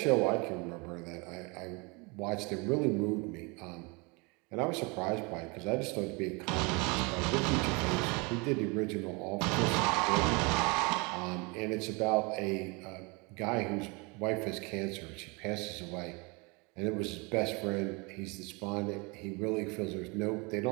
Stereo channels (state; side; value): quieter; left; 29.1 dB